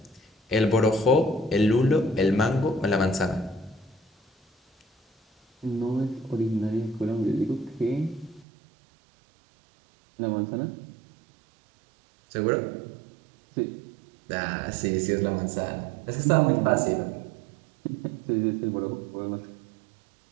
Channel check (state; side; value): drops out; left; at 8.5 s